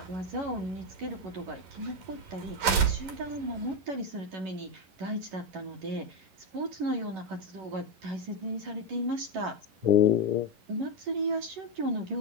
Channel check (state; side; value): late; left; 11 ms